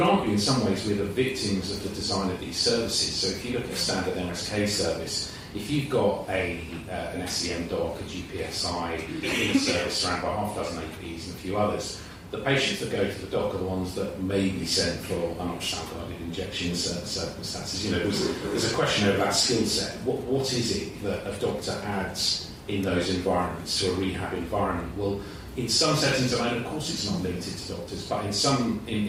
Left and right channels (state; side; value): identical; both; correlation 1.00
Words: argue in some ways we're the victims of the design of these services. So if you look at a standard MSK service, if you've got an SEM doc, a GPSI in a service surrounded by half a dozen APs and a few others, the patients that go to the doc are the ones that may be sent for an ultrasound-guided injection in certain circumstances. There's a question over that skill set. What is it that a doctor adds in those environments to a rehab environment? Well, in some settings, of course it's not limited to doctors, but